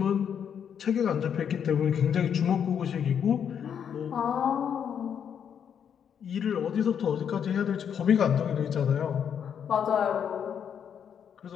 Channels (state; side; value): quieter; right; 8.1 dB